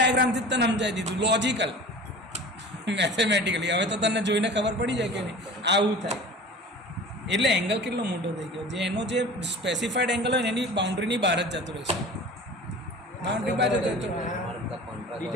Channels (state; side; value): normal; both; correlation 0.39